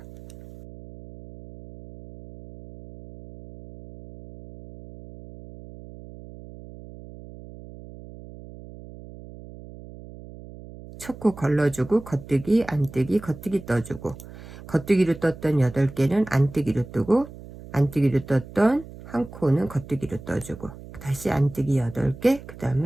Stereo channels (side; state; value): right; noise; hum, 16 dB below the sound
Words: 첫 코 걸러주고 겉뜨기, 안뜨기, 겉뜨기 떠주고, 겉뜨기로 떴던 8개는 안뜨기로 뜨고, 안뜨기로 떴던 한 코는 겉뜨기로 떠주고, 다시 안뜨기 8개, 그